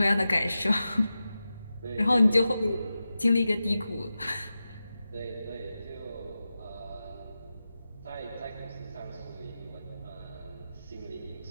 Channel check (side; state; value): both; inverted; correlation -0.92